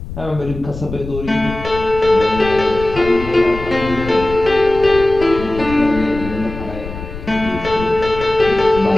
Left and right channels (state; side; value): noise; left; rumble, 11 dB below the sound